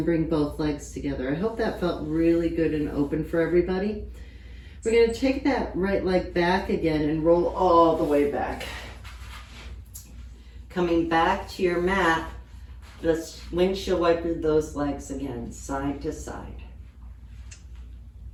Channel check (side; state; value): both; identical; correlation 1.00